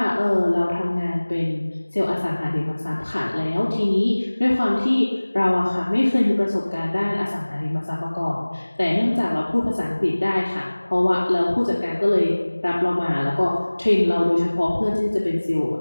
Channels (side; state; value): both; inverted; correlation -1.00